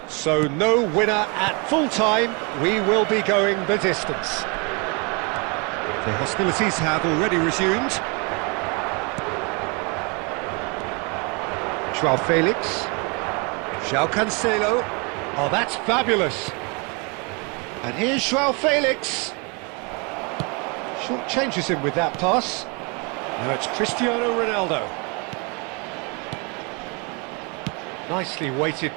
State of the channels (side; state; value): left; quieter; 31.9 dB